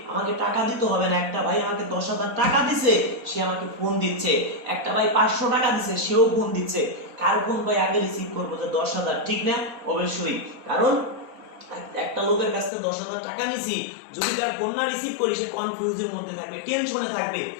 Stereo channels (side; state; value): right; drops out; at 12.7 s